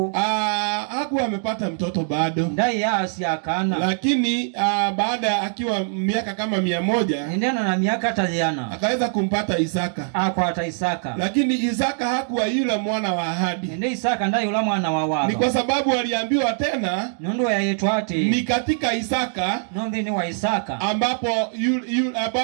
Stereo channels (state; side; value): silent; left; digital silence